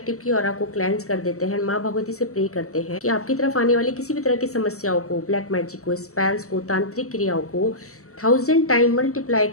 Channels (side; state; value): right; late; 0.65 ms